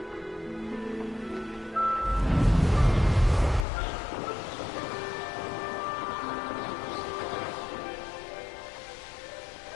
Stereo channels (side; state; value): right; drops out; at 3.7 s